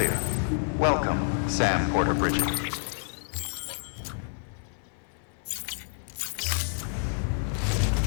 Welcome, Sam Porter Bridget.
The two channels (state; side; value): silent; right; 56 dB below the other